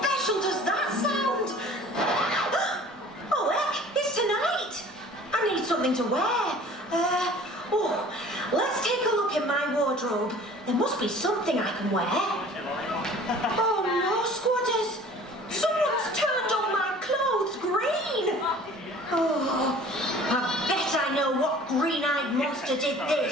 does that sound? Oh, heck, it's tonight! I need something to wear. Let's take a look in my wardrobe. There must be something I can wear. Oh no, squatters! Someone's turned all my clothes green! Oh, I bet I know what green-eyed monster did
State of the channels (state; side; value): normal; both; correlation 0.47